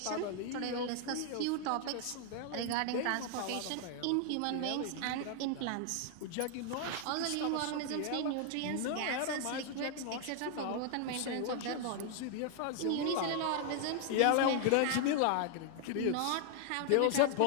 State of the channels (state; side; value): different; both; correlation 0.00